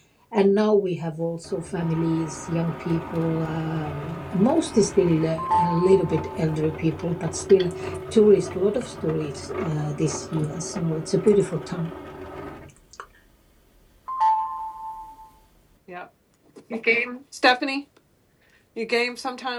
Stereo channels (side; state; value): both; identical; correlation 1.00